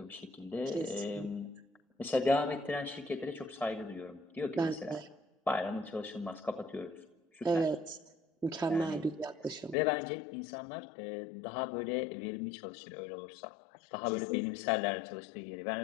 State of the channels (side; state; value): right; drops out; at 9.8 s